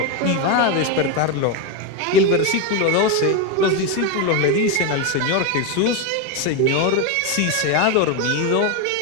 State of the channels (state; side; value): different; both; correlation 0.03